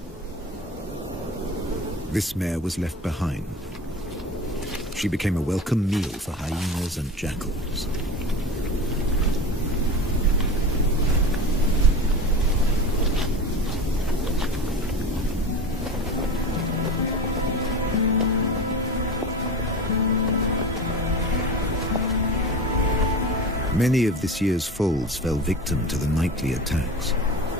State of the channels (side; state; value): both; normal; correlation 0.31